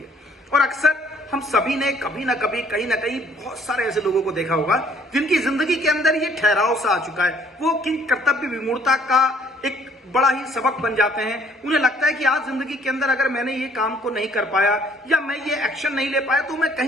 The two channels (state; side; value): normal; both; correlation 0.61